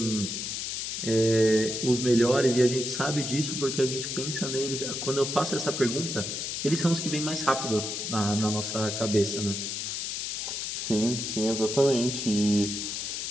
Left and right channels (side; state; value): left; noise; hiss, 3 dB below the sound